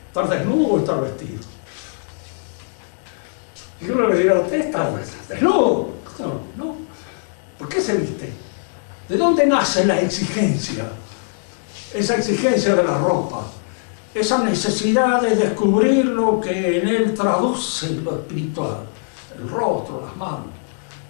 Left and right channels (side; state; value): right; silent; digital silence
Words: ¿Estar desnudo o estar vestido? Y uno le dirá, ¿usted está desnudo? No. ¿Por qué se viste? ¿De dónde nace la exigencia? Esa exigencia de la ropa, esa necesidad de descubrir lo que en él traduce lo espiritual, el rostro, las manos,